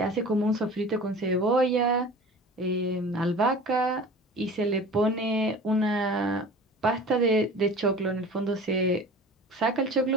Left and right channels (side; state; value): both; normal; correlation 0.40